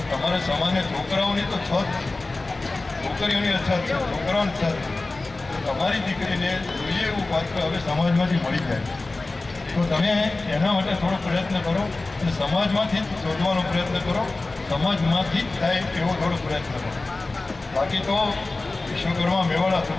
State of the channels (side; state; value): right; quieter; 3.3 dB